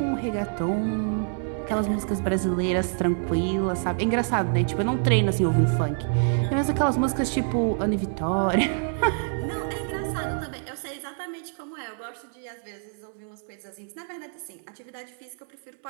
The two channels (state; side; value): silent; left; 61 dB below the other